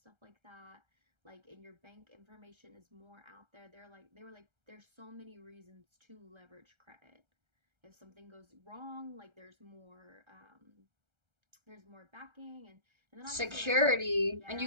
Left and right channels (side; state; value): left; late; 1.3 ms